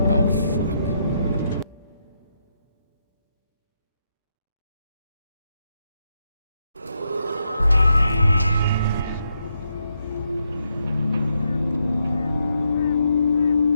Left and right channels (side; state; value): both; inverted; correlation -0.80